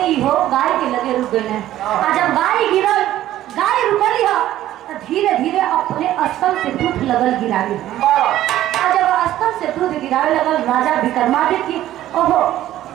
ही हो गाय के लगे रुक गए। जब गाय गिरल गाय रुकली तो धीरे धीरे अपने स्थल से दूध लगल गिरावे। जब स्थल से दूध गिरावे लगल राजा विक्रमादित्य ओहो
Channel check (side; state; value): left; quieter; 13.5 dB